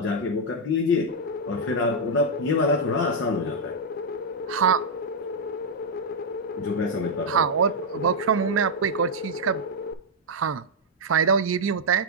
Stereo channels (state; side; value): normal; both; correlation -0.04